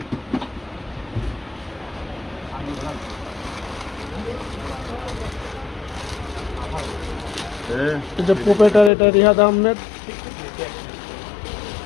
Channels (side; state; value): right; drops out; at 8.9 s